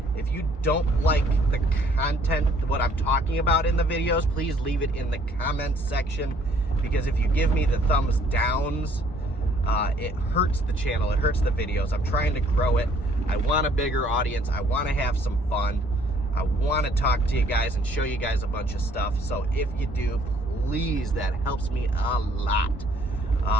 If you don't like the content, what I'm talking about in the videos, please leave it in the comments section. Because if you give me the thumbs downs, it hurts the channel, it hurts the videos. I'm trying to grow it. I want a bigger audience. I want to have some fun. I want to talk to you guys and show you guys a bunch of stuff. So if you do, please, that helps me a lot.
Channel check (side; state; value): both; normal; correlation 0.61